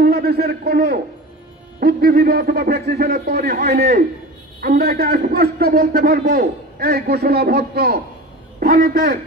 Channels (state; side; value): normal; both; correlation 0.33